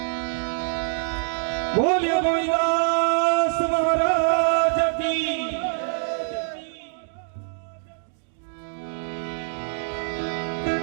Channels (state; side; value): silent; left; digital silence